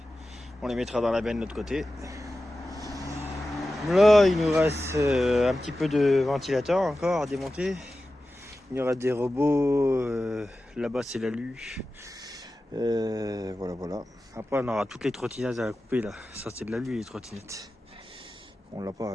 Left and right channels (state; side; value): normal; both; correlation 0.94